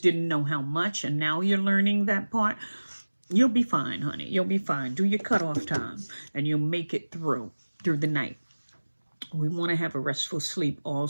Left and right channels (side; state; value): both; inverted; correlation -1.00